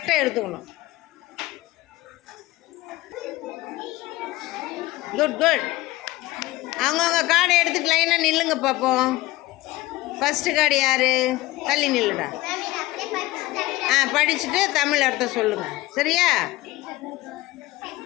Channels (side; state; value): right; quieter; 18.6 dB